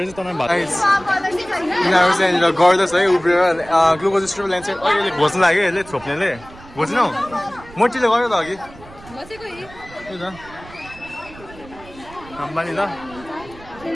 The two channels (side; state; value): right; noise; rumble, 20 dB below the sound